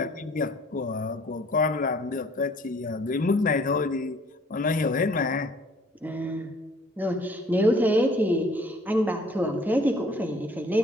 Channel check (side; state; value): both; normal; correlation 0.56